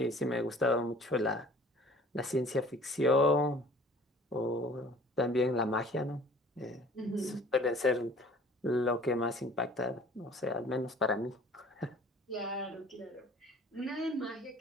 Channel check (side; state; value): both; normal; correlation 0.50